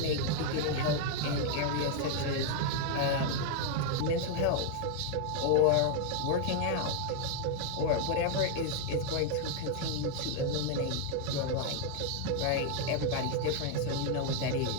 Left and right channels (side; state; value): both; different; correlation 0.00